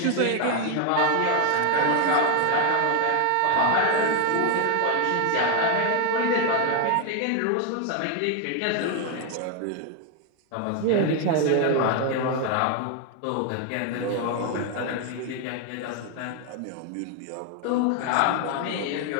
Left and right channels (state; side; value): different; both; correlation 0.01